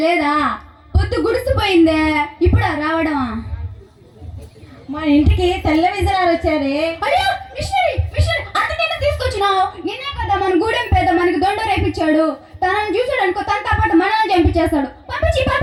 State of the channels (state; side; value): identical; both; correlation 1.00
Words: లేదా? పొద్దు గుడిసిపోయిందే, ఇప్పుడా రావడమా? మా ఇంటికి తెల్ల విజయాలు వచ్చారే. అయ్యో మిషనరీ మిషనరీ, అంతకైనా తీసుకొచ్చినావు? నిన్నే కదా మన గూడెం పేద మనకి దొండ రేపించాడు. తనని చూసాడు అనుకో, తనతో పాటు మనల్ని చంపించేస్తాడు. పంపించి